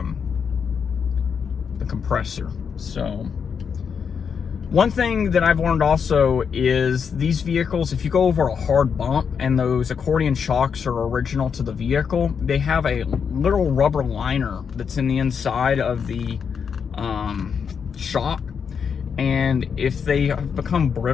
compressor. So one thing that I've learned also is these vehicles, if you go over a hard bump and those accordion shocks are original to the vehicle, they have a little rubber liner that's in the inside of the shock, and if they become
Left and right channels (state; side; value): quieter; right; 6.6 dB